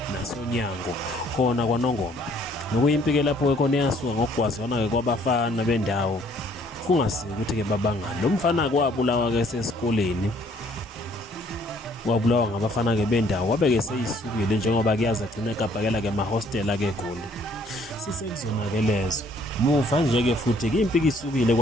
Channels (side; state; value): both; normal; correlation 0.62